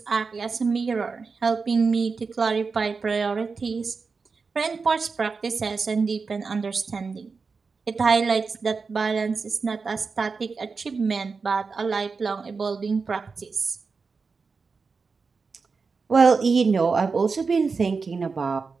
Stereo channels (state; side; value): quieter; left; 4.7 dB